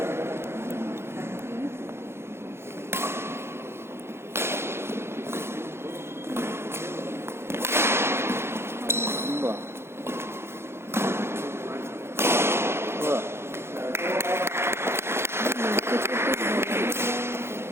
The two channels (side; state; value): left; late; 0.12 ms